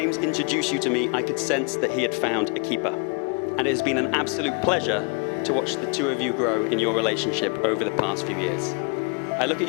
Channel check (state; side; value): quieter; right; 34.2 dB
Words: introduced you to me, I could sense that he had found a keeper. And it has been an absolute pleasure to watch the two of you grow in your relationship over the past few years. I look at